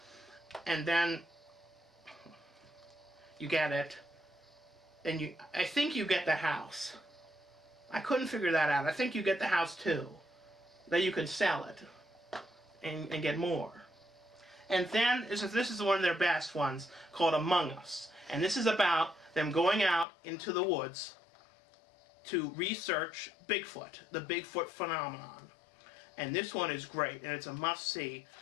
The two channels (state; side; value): drops out; right; at 20.1 s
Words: And then you get it. And I think you get the house. I couldn't figure that out. I think you get the house too. Then you can sell it and get more. And then this is one of their best ones called Among Us. And this is about them going out into the woods to research Bigfoot, the Bigfoot phenomenon. And this one is great, and it's a must-see,